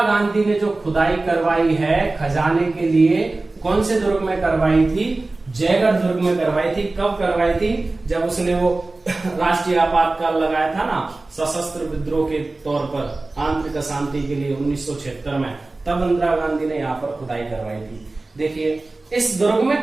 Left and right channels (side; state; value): left; quieter; 3.2 dB